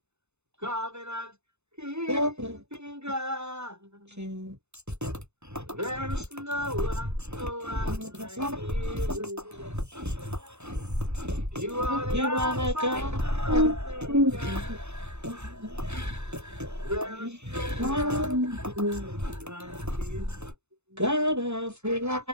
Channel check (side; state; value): left; late; 0.81 ms